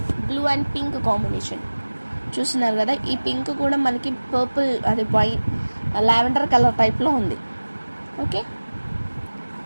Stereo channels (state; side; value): inverted; both; correlation -1.00